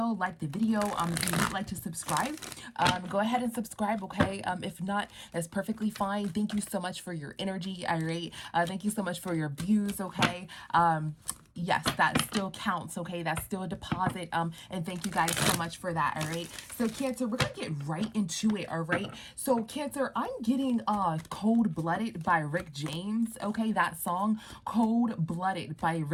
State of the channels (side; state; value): both; identical; correlation 1.00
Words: if you would like to subscribe, go ahead and subscribe, okay? If not, that's perfectly fine. Thank you so much for your energy, all right? Thank you so much for your views, okay? Yes, that still counts, okay? That's still a deposit, and thank you guys so much for that, all right? So, Cancer, we're gonna get right into it, all right? So, Cancer, I'm getting Cold-Blooded by Rick James, okay? That song, Cold-Blooded by